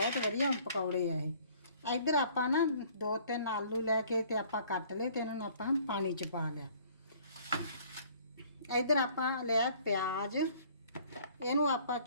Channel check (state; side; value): inverted; both; correlation -0.56